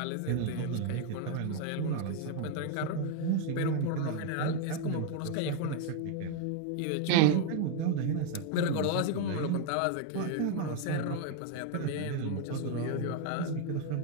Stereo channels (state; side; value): different; both; correlation 0.01